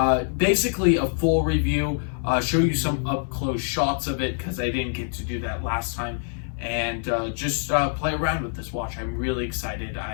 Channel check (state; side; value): silent; right; digital silence